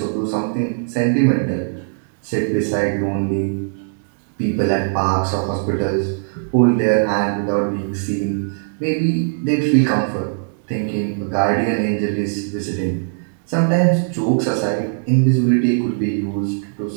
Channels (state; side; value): silent; left; digital silence